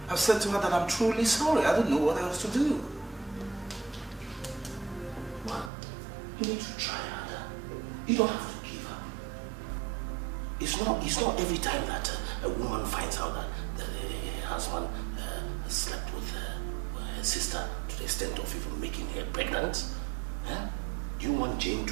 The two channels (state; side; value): drops out; left; at 5.7 s